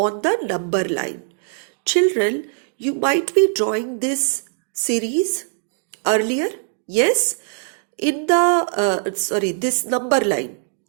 the number line? Children, you might be drawing this series earlier. Yes? In this number line.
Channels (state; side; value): silent; left; 65 dB below the other